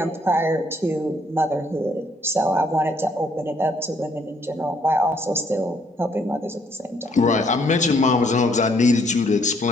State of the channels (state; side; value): normal; both; correlation 0.67